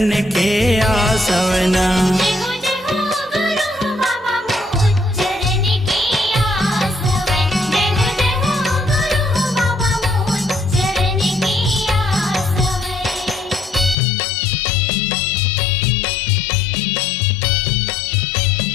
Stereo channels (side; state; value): right; drops out; at 14.0 s